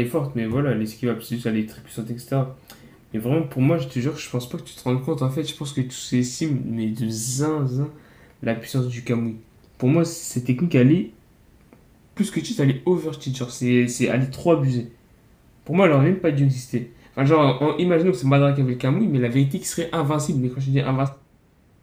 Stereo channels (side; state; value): both; identical; correlation 1.00